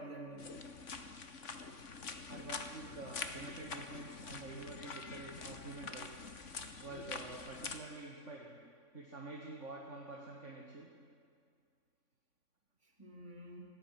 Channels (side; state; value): right; late; 3.5 ms